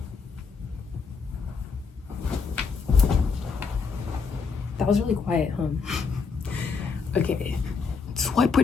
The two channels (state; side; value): quieter; right; 5.1 dB